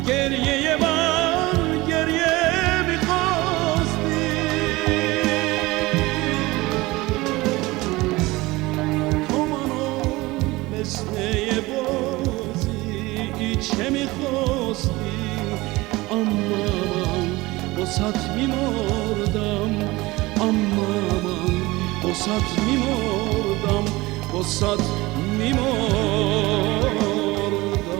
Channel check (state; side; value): quieter; left; 20.8 dB